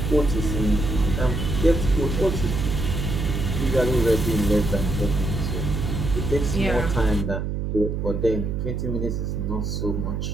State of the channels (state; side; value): noise; right; hum, 2 dB below the sound